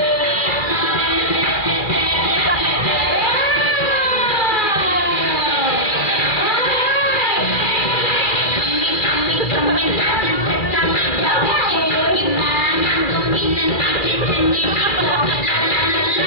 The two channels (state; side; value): late; right; 2.4 ms